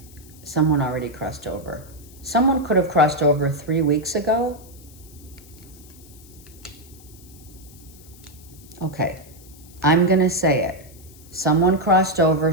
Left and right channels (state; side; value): noise; left; hiss, 23 dB below the sound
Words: someone already crossed over. Someone could have crossed over 3 weeks ago. Okay. I'm going to say it. Someone crossed over